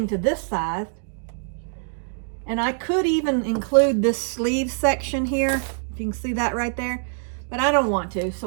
to this side. And I could even include this sleeve section here, if you can see that right there. But I don't want to,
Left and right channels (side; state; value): left; silent; 62 dB below the other